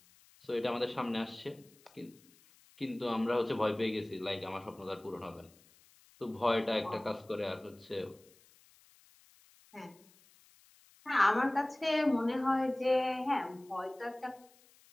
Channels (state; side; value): noise; left; hiss, 28 dB below the sound